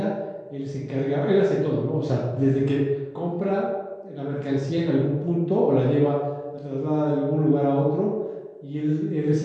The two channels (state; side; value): identical; both; correlation 1.00